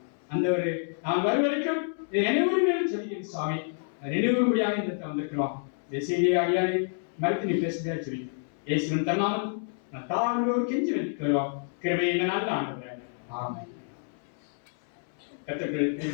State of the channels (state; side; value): silent; right; 59 dB below the other